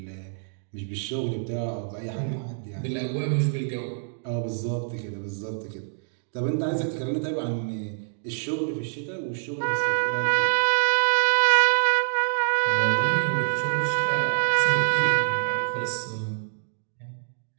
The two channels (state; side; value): silent; left; digital silence